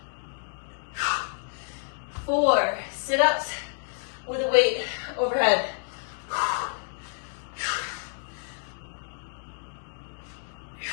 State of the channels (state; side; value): silent; right; digital silence